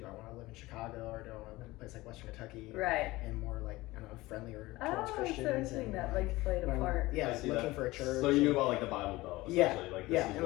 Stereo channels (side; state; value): right; quieter; 19.5 dB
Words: I want to live in Chicago, or do I want to live in a place like Western Kentucky? Right. And more like, I don't know, friendlier towards Christians. So interesting that like played a part. Yeah, looking for a church. So you knew about like the Bible Belt, essentially. Like, and